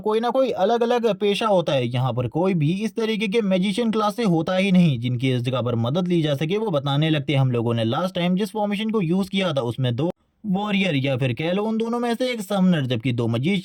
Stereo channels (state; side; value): identical; both; correlation 1.00